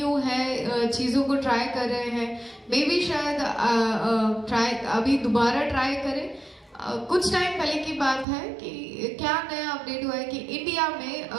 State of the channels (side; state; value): left; drops out; at 8.2 s